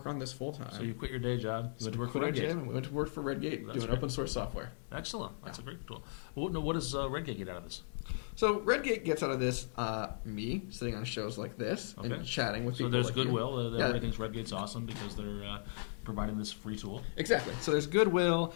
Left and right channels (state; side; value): silent; right; digital silence